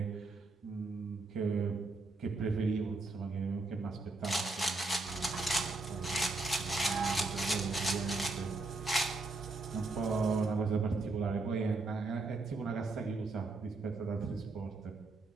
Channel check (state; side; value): quieter; left; 3.3 dB